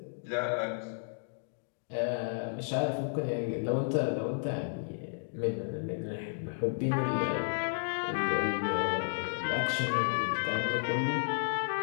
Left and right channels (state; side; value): silent; right; digital silence